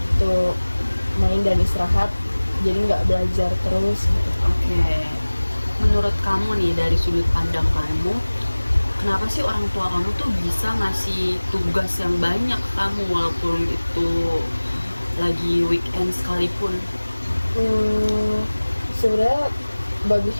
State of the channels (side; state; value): both; inverted; correlation -1.00